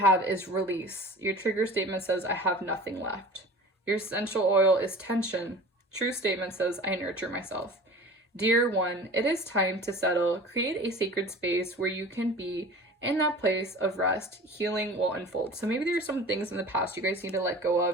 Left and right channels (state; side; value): normal; both; correlation 0.40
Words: is release. Your trigger statement says, I have nothing left. Your essential oil is tension. True statement says, I nurture myself. Dear one, it is time to settle. Create a sacred space where you can be in that place of rest. Healing will unfold. So maybe there's some things in the past you guys need to let go